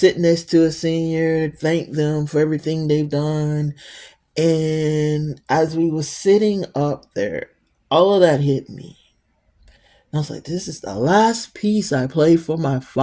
next to a senior, thank them for everything they've done. And as we were sitting up there, all of that hit me. I was like, this is the last piece I play for my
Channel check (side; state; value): both; identical; correlation 1.00